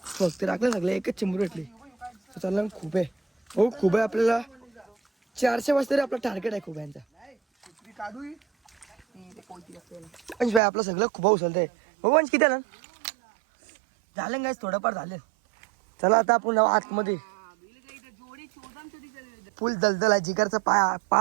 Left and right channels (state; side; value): drops out; left; at 10.6 s